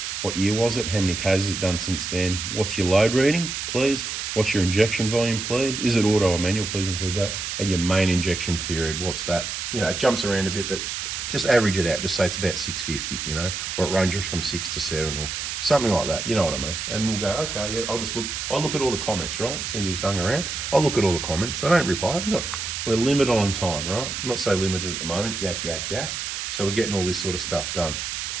What year was it? How many Ks has it done since then? What's your load reading, please? What's your injection volume, please? Is it auto or manual? Please include that. And your main injection period, what's that? You know, it jumps around a bit, but just average it out. Just say it's about 650, you know, or it ranges from 6 to 7 or something like that. You know what I mean? And we'll go, okay, yeah, I'll look at all the comments, right? Since you hung around, I'll look at all the comments. I don't reply. Look, we're limited on time, right? I'm not so limited at the moment. Yak, yak, yak. So we're getting all this sort of stuff done.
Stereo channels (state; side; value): noise; right; hiss, 4 dB below the sound